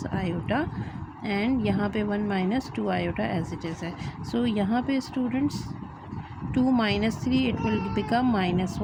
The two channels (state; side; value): identical; both; correlation 1.00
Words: iota and यहाँ पे 1 minus 2 iota as it is है। सो यहाँ पे students 2 minus 3 it will become minus